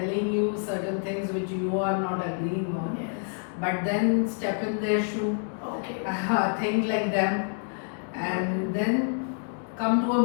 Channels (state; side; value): silent; right; 60 dB below the other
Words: you certain things which you are not agreeing on, Yes. but then step in their shoe, Okay. think like them, and then come to a